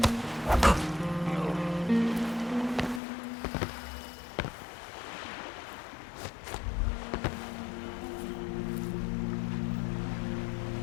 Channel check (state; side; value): drops out; right; at 3.0 s